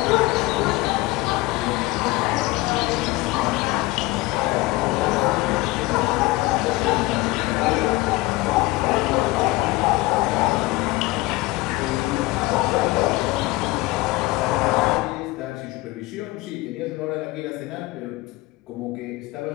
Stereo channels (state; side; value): quieter; right; 20.5 dB